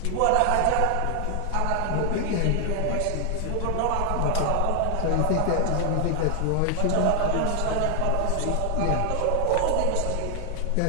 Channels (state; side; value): different; both; correlation 0.00